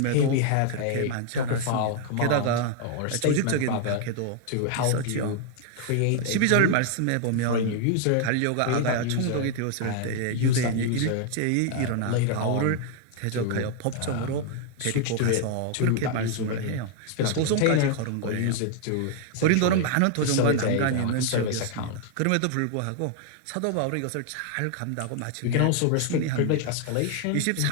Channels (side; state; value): both; different; correlation 0.00